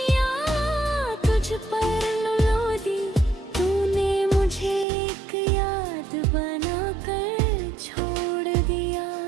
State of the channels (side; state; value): left; drops out; at 4.9 s